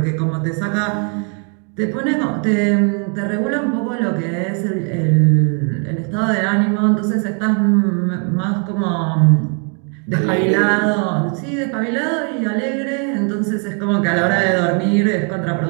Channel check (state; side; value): quieter; left; 38.9 dB